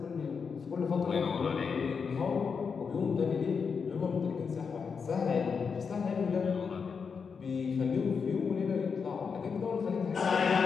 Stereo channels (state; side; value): quieter; right; 5.8 dB